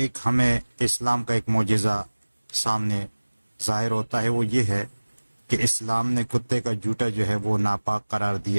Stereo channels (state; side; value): inverted; both; correlation -1.00